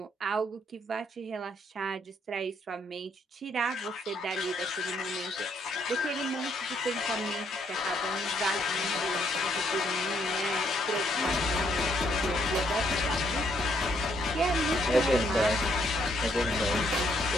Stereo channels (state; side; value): normal; both; correlation 0.71